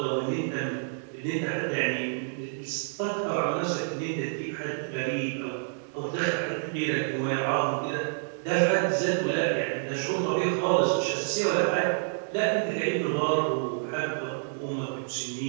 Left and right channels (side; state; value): left; silent; digital silence